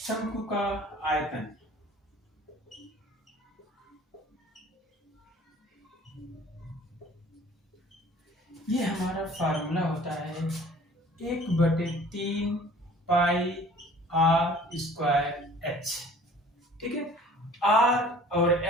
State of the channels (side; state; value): both; normal; correlation 0.49